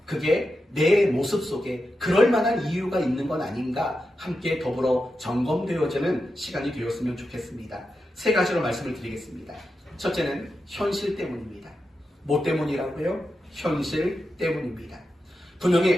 그게 내 모습 속에 그럴 만한 이유가 있는 건 아닌가 함께 더불어 점검되어지는 시간이 되었으면 좋겠습니다. 세 가지로 말씀을 드리겠습니다. 첫째는 현실 때문입니다. 뭐 때문이라고요? 현실 때문입니다.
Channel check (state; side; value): normal; both; correlation 0.89